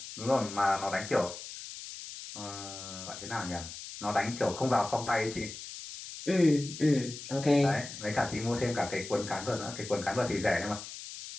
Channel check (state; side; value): noise; left; hiss, 11 dB below the sound